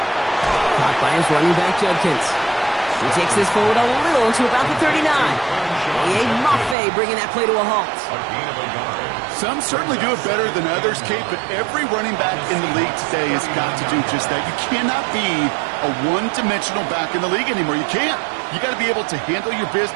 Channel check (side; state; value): left; drops out; at 6.8 s